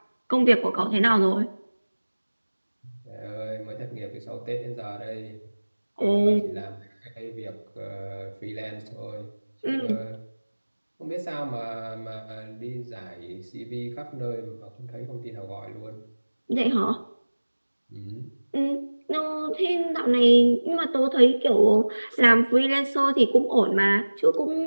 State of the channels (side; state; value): both; inverted; correlation -1.00